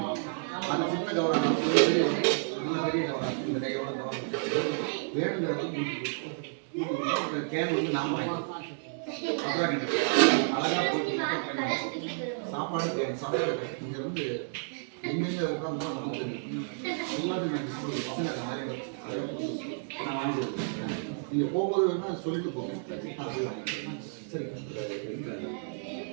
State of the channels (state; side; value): silent; left; digital silence